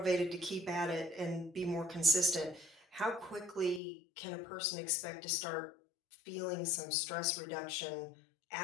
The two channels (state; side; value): drops out; right; at 3.8 s